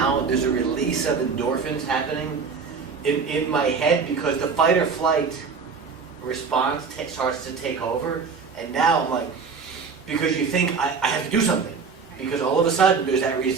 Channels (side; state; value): left; quieter; 5.3 dB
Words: There's a release of endorphins happening in my head because the fight or flight response starts to take over. And now I'm like, because you think I have to do something. Because all of a sudden there's that